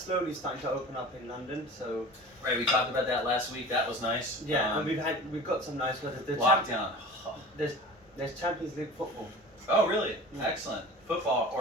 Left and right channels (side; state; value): both; normal; correlation 0.39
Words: starting to open up in London. So right, we talked about that last week. That was nice. Yeah, and we've got some nice weather. Lockdown. There's Champions League football. Oh really? Yeah. Excellent. Football